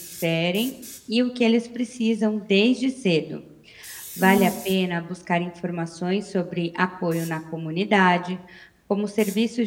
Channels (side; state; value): both; identical; correlation 1.00